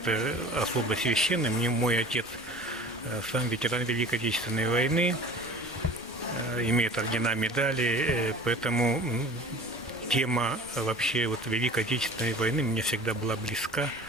особо священная. Мне мой отец сам ветеран Великой Отечественной войны, имеет ордена, медали, поэтому тема вообще Великой Отечественной войны мне всегда была близка.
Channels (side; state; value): both; normal; correlation 0.42